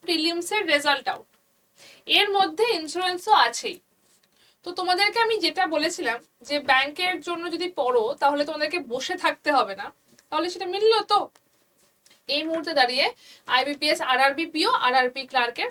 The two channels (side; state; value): both; identical; correlation 1.00